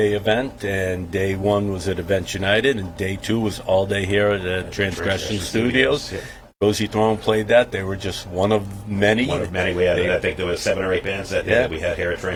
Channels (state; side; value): identical; both; correlation 1.00